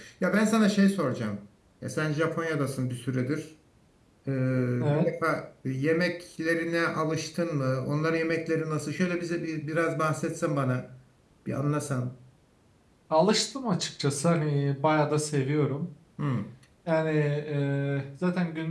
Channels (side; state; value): both; identical; correlation 1.00